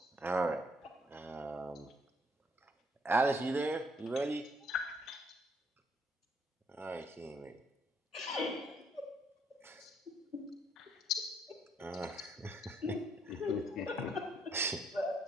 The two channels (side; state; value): both; normal; correlation 0.69